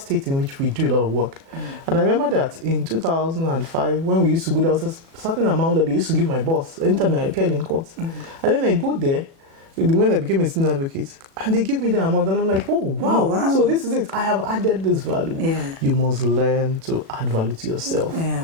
in which we do a lot of work. And I remember that in 2005, when we used to go, there was a certain amount that they used to give my boss anytime I appeared in court. And then I go there, when I became a senior advocate, and they give me the amount, and I'm like, oh, wow. So this is it. I have added this value. You must learn to add value to yourself.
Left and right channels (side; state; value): left; late; 36 ms